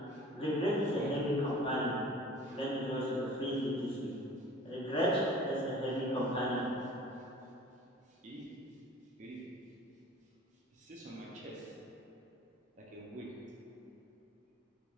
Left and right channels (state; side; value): normal; both; correlation 0.46